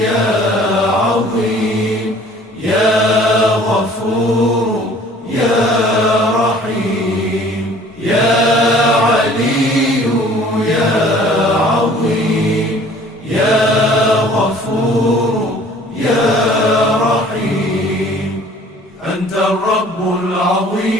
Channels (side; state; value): both; normal; correlation 0.52